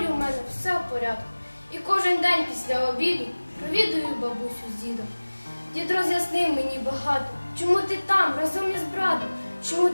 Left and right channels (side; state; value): both; inverted; correlation -1.00